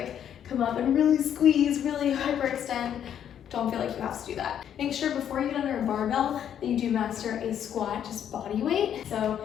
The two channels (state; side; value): quieter; right; 9.5 dB